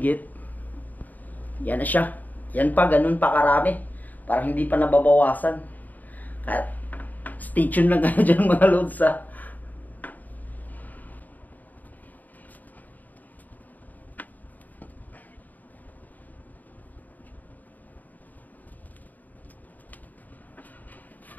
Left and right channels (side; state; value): right; late; 0.082 ms